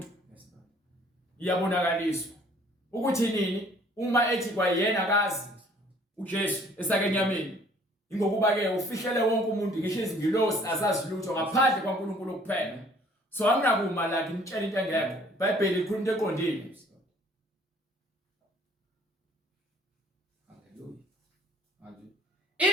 iyabonakaliswa ukuthi nini uma ethi kwayena akazi uJesu esakenyameni, ingokuba ke ufihlele wonke umuntu ngisho izingilosi azazi lutho ngaphandle kwaNkulunkulu kuphela. So anginakuma la ngimtshela into engekho. iBhayibheli ikhuluma into eqondile.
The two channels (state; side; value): normal; both; correlation 0.57